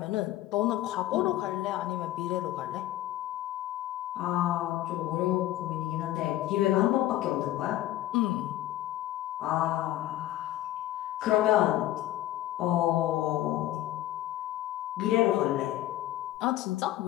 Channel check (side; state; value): right; quieter; 14.3 dB